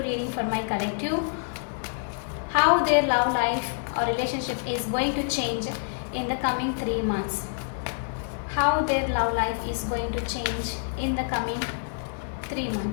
reading for my collective. How their love life or relationship is going to change in the coming 3 months. How their love life is going to change in the coming 3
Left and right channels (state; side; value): silent; right; 60 dB below the other